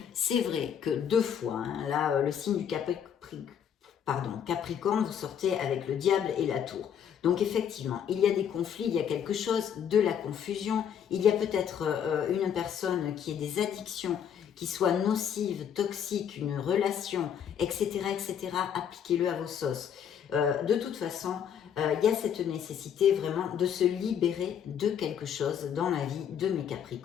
c'est vrai que 2 fois, hein, là, le signe du Capricorne, vous sortez avec le diable et la tour. Donc, effectivement, il y a des conflits, il y a quelque chose, de la confusion. Il y a peut-être une personne qui ait des addictions, qui soit nocive, toxique, une relation, etc., etc. Appliquez-le à vos sauces. De toute façon, il y a cette nécessité vraiment de se libérer de quelque chose dans la vie de mes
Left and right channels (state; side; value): quieter; right; 8.5 dB